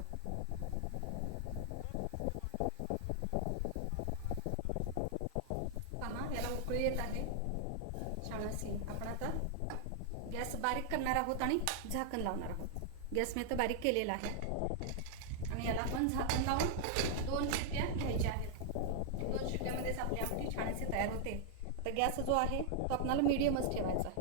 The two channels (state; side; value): different; both; correlation -0.01